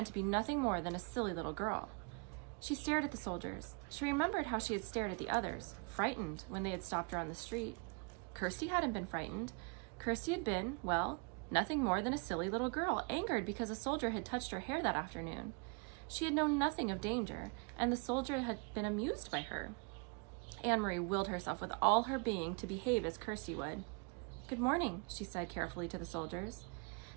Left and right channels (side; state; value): left; quieter; 34.8 dB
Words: to be nothing more than a silly little girl. She stared at the soldiers. She remembered how she had stared at the others, frightened when they had stopped her on the street. Kirsty hadn't been frightened. Kirsty had been, well, nothing more than a silly little girl, angered because a soldier had touched her hair that afternoon. She had known nothing of danger, and the soldier had been amused by her. Anne-Marie willed herself with all her being to behave as Kirsty would. "Good morning," she said carefully to the soldiers.